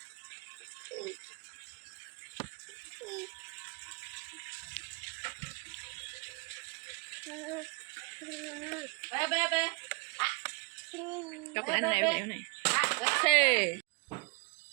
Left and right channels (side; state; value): left; quieter; 30.3 dB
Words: Coklat này bên này. Thế.